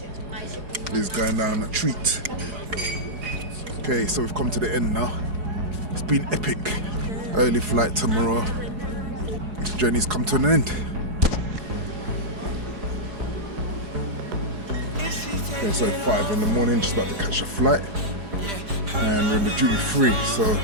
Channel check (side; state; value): left; late; 4.8 ms